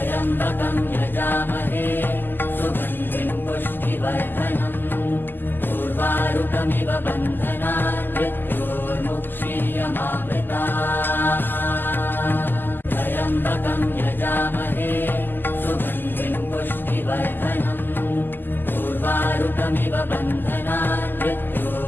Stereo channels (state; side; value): late; right; 0.092 ms